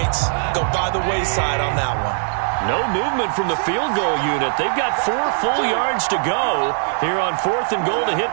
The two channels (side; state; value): left; silent; digital silence